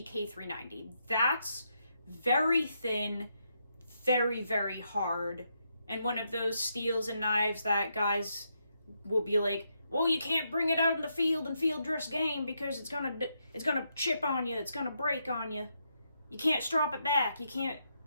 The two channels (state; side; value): inverted; both; correlation -0.80